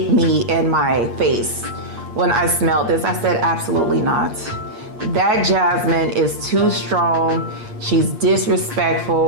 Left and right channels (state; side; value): late; left; 8.5 ms